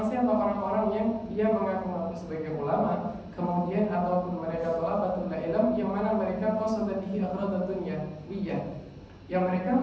siapa? Orang-orang yang dia mengaku-ngaku sebagai ulama, kemudian ataupun mereka thalabatul ilm yang mana mereka qasada bihi aghradan dunyawiyah, yang mereka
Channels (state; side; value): identical; both; correlation 1.00